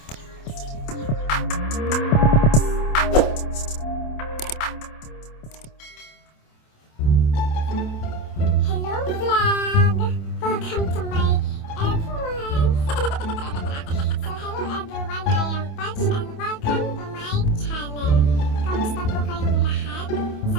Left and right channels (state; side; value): late; right; 28 ms